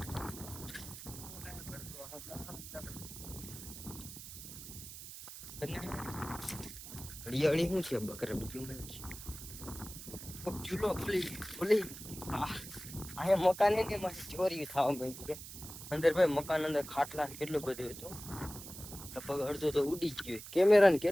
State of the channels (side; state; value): right; noise; hiss, 12 dB below the sound